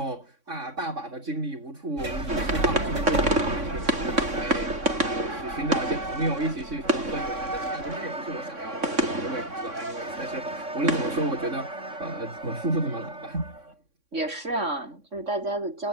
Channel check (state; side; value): late; left; 3.6 ms